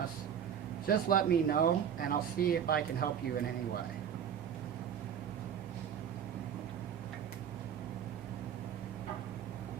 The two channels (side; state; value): left; quieter; 8.6 dB